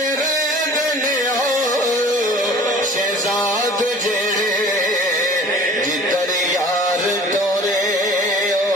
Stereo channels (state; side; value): normal; both; correlation 0.46